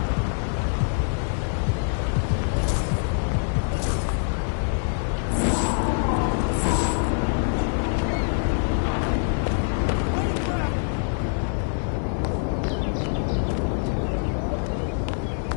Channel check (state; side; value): silent; right; digital silence